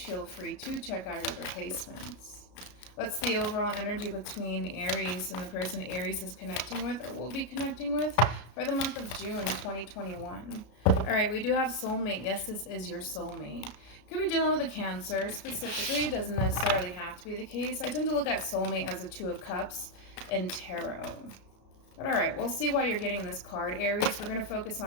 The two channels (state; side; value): late; right; 33 ms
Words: free to check out your other placements. What's the overall energy between Aries and the person Aries is connecting with or will be connecting with for the month of June 2021? All right, we do have soulmate. Yes, this is your soulmate. Could be dealing with a Cancer specifically. It doesn't necessarily have to be the case. I tend to look at soulmate as a Two of Cups and Tarot. But all right, we'll see why you're getting this card, Aries. We're going to focus